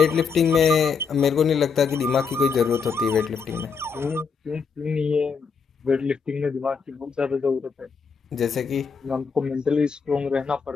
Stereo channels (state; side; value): quieter; right; 5.7 dB